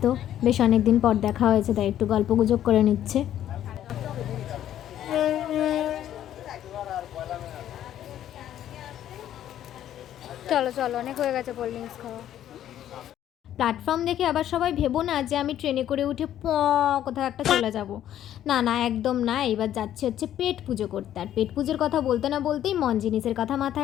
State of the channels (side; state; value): right; quieter; 11.4 dB